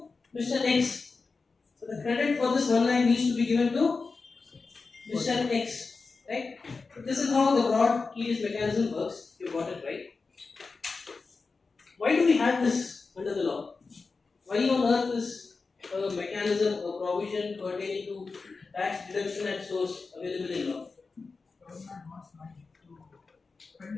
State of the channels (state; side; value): quieter; right; 4.3 dB